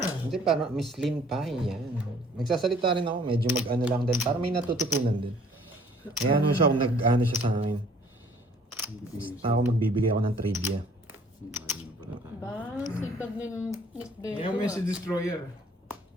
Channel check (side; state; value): both; normal; correlation 0.57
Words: Hindi, parang Miss Lynn pa yan. Nagsasalita rin ako, medyo mag-ano lang din. Para may natututunan din. Kaya ano siya, kung nag-ano siya sa akin. Basta ako magbibigay ako ng trivia. Ayun pala tayo. Ba, sipag ni Miss Beto. Ngayon mo yung si Destroyer.